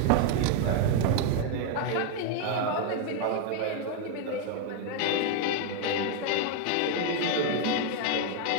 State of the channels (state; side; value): different; both; correlation 0.01